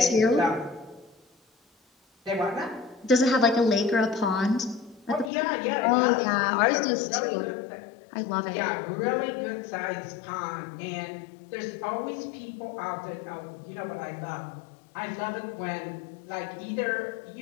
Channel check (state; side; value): drops out; right; at 5.3 s